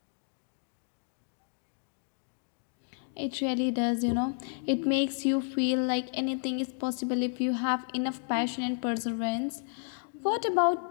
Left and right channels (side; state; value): right; silent; 57 dB below the other